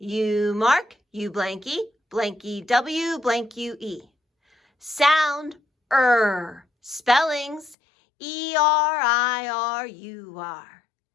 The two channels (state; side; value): drops out; right; at 7.8 s